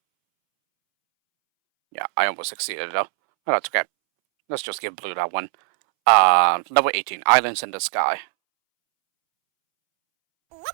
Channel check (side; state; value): left; silent; 65 dB below the other